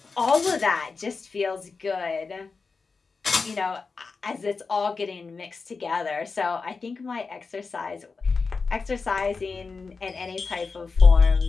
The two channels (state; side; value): quieter; right; 4.6 dB